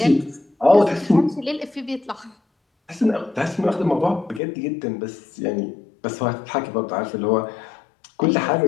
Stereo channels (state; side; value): drops out; right; at 4.4 s